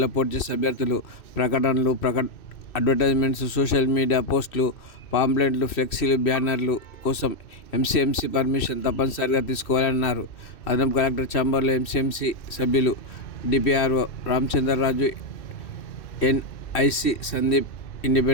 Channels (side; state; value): right; late; 2.6 ms